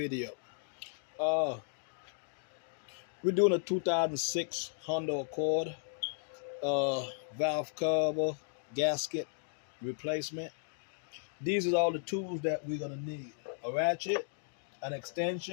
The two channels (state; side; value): silent; right; digital silence